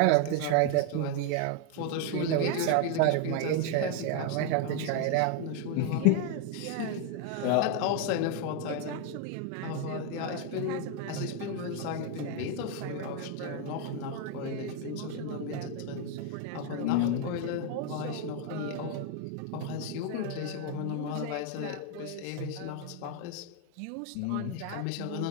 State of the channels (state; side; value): different; both; correlation 0.01